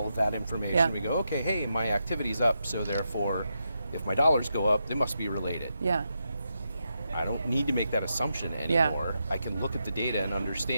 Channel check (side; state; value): both; inverted; correlation -0.85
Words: of that information. Yeah. We go, okay, hey, my activity's up, so therefore, if my dollars go up, they must be related. Yeah. I don't need to make that assumption anymore. I can look at the data and